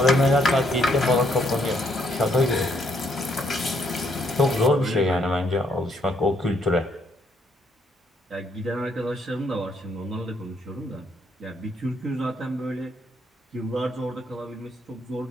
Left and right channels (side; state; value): both; normal; correlation 0.72